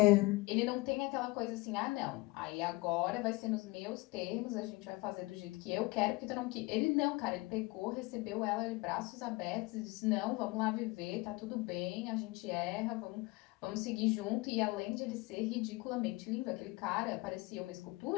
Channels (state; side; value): quieter; right; 23.2 dB